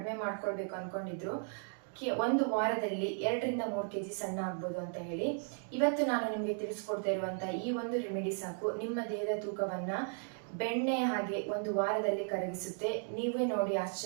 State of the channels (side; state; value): left; silent; 54 dB below the other